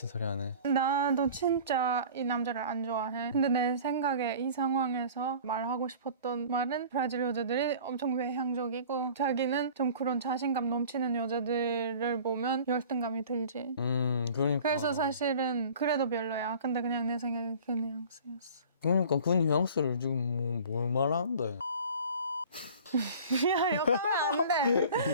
소리 하네. 나도 진짜 이 남자를 안 좋아해. 근데 내 생각에 이 상황에서 말하고 싶었던 말은 브라질 여자들이 엄청 외향적이고 자기는 좀 그런 자신감 넘치는 여자들을 보면 열등감이 들지. 그러니까. 그래서 사실은 그래도 별로야. 근데 그냥 내 생각에 그 뉘앙스였어. 그러니까 그 뉘앙스를 지금 뭘 말하는데? 야, 욕하면 안 돼.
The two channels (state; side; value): inverted; both; correlation -0.44